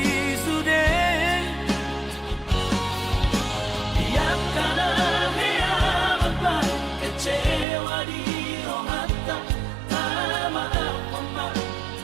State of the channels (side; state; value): left; drops out; at 7.7 s